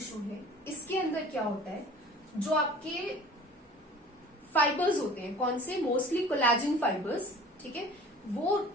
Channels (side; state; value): both; normal; correlation 0.45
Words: है इसके अंदर क्या होता है, जो आपके फाइबर्स होते हैं, कौन से, मोस्टली कोलेजन फाइबर्स, ठीक है, वो